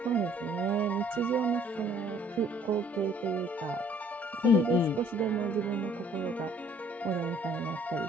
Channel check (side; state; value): both; normal; correlation 0.59